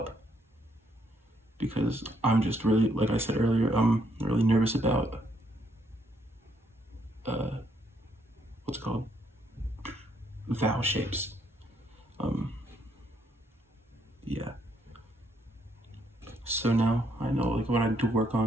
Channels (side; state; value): both; normal; correlation 0.72